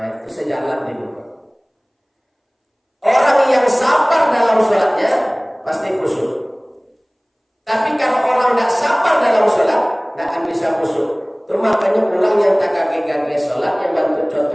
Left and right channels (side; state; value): both; identical; correlation 1.00